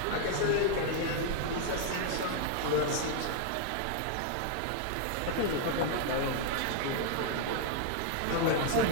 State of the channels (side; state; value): both; different; correlation 0.00